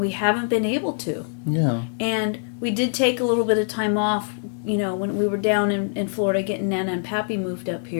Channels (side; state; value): right; silent; digital silence